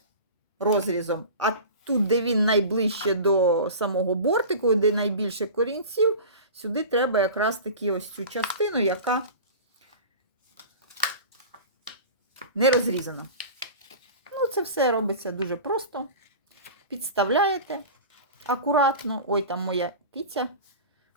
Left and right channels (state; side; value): inverted; both; correlation -0.34